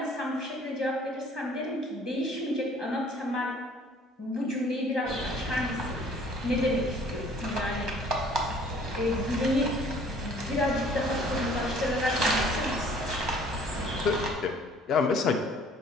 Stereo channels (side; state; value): both; normal; correlation 0.55